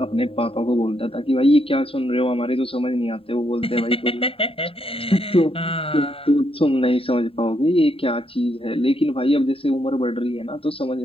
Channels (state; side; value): late; right; 0.27 ms